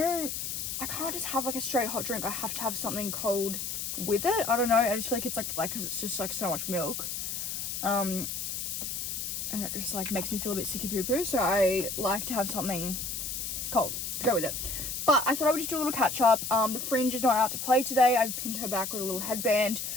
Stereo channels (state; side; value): noise; left; hiss, 4 dB below the sound